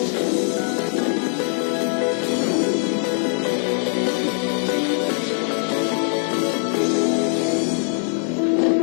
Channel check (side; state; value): right; silent; 60 dB below the other